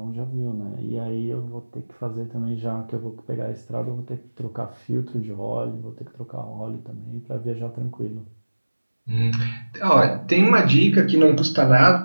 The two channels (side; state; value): both; inverted; correlation -1.00